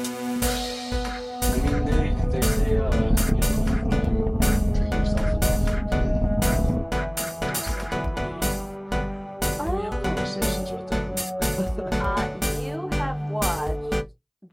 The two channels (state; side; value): identical; both; correlation 1.00